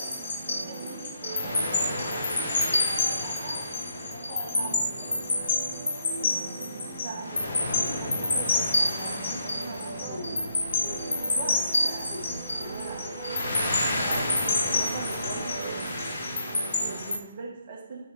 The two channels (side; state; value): both; inverted; correlation -0.74